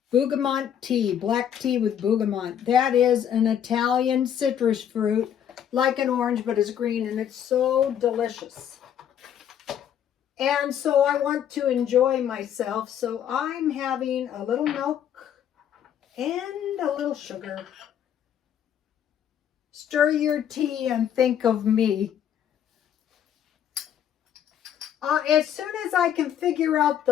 Bergamot tea, black tea with bergamot. That is an Italian citrus fruit, like an orange, but it's green, and it's so delicious. And so I want to enjoy myself, so I'm having a little milk and a little sugar. Stir your tea and think of me. As soon as I can figure out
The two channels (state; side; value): quieter; right; 9.5 dB